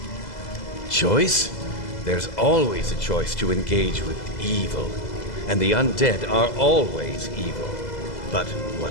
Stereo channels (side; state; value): right; late; 2.0 ms